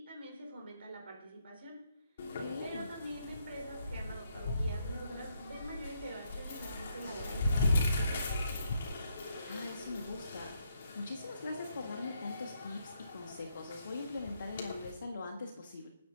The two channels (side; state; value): both; inverted; correlation -0.76